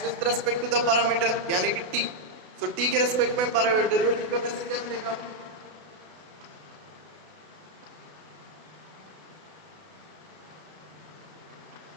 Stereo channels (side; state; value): left; late; 32 ms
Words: with respect to the parameter यानी कि t, सो t के रेस्पेक्ट में डेरिवेटिव करने से क्या मिलेगा?